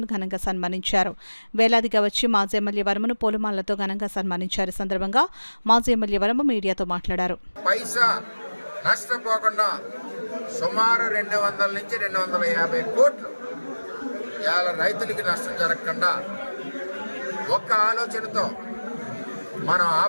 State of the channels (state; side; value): inverted; both; correlation -1.00